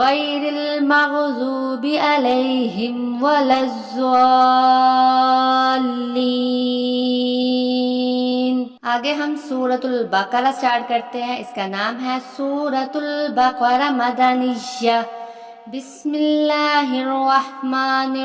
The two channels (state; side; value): identical; both; correlation 1.00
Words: المغضوب علیہم ولا الضالین۔ آگے ہم سورۃ البقرہ سٹارٹ کرتے ہیں، اس کا نام ہے سورۃ البقرہ مدنیہ۔ بسم اللہ الرحمن